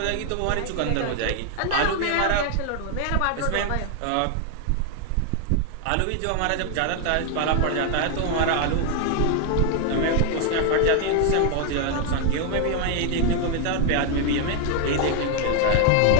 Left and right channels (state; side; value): different; both; correlation 0.00